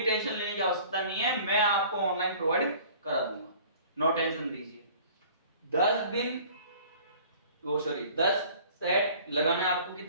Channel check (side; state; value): both; inverted; correlation -0.49